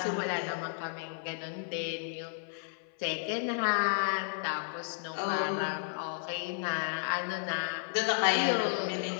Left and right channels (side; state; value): right; silent; 56 dB below the other